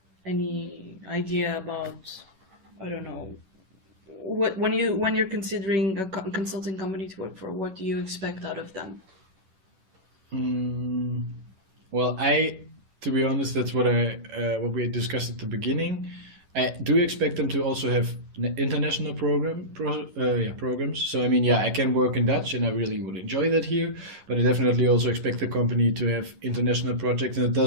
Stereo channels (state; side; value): late; left; 11 ms